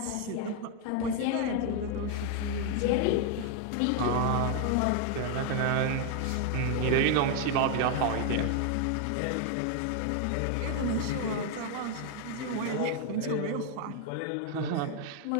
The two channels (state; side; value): different; both; correlation 0.00